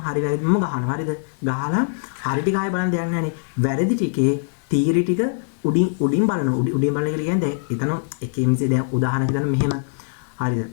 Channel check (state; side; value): silent; right; 59 dB below the other